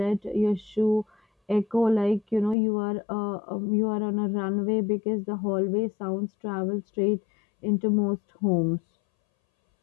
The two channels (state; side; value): drops out; right; at 2.6 s